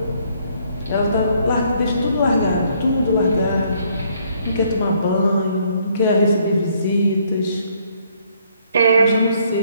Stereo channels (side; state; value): both; inverted; correlation -0.67